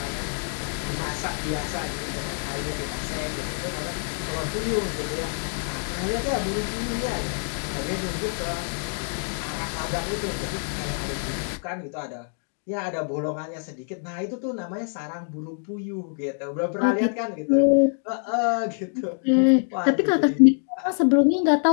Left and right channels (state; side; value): silent; right; 61 dB below the other